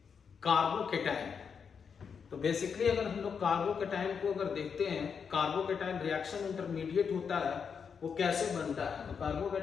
कार्बोकेटाइन। तो बेसिकली अगर हम लोग कार्बोकेटाइन को अगर देखते हैं, कार्बोकेटाइन रिएक्शन इंटरमीडिएट होता है, वो कैसे बनता है। तो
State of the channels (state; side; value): quieter; right; 6.4 dB